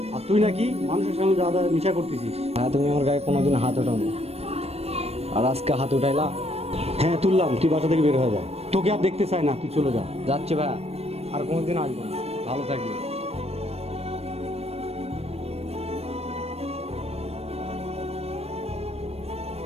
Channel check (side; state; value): left; late; 0.30 ms